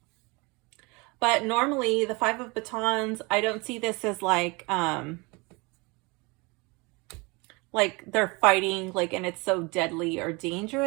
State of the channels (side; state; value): left; quieter; 27.0 dB